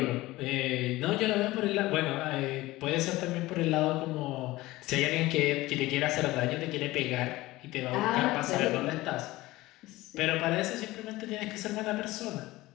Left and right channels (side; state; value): right; quieter; 18.6 dB